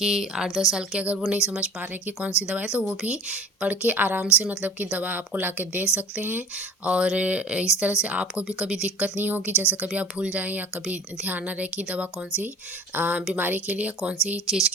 8-10 साल के, अगर वो नहीं समझ पा रहे हैं कि कौन सी दवा है तो वो भी पढ़ के आराम से मतलब कि दवा आपको ला के दे सकते हैं। और इस तरह से आपको भी कभी दिक्कत नहीं होगी, जैसे कभी आप भूल जाएँ या कभी ध्यान ना रहे कि दवा कौन-सी बीमारी के लिए, कौन-सी चीज़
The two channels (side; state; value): both; normal; correlation 0.42